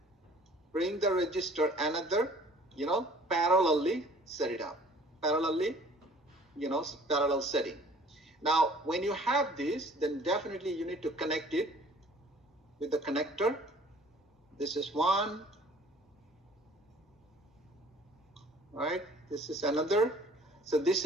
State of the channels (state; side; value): normal; both; correlation 0.52